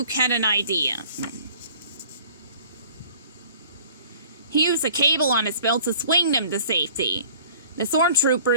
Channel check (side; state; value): both; inverted; correlation -0.50